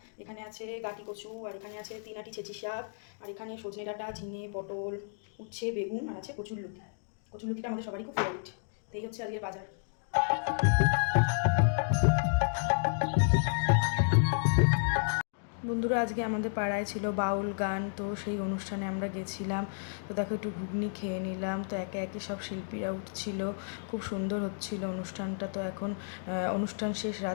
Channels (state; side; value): silent; right; digital silence